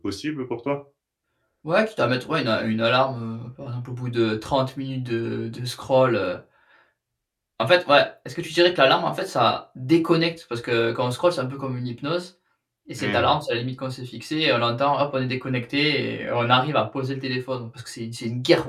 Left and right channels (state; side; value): identical; both; correlation 1.00